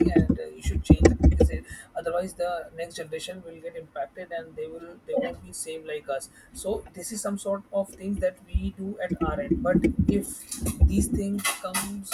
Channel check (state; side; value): identical; both; correlation 1.00